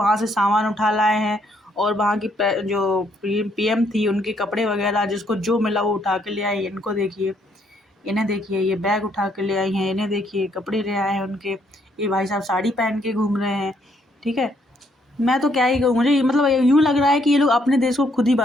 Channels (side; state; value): both; normal; correlation 0.71